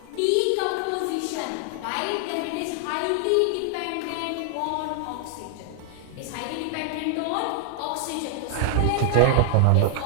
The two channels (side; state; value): both; different; correlation 0.00